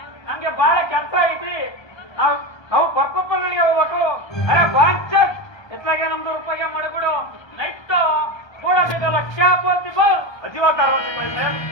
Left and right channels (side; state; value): right; late; 1.3 ms